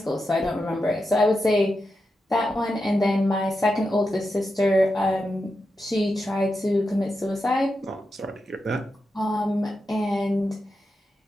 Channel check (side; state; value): both; normal; correlation 0.88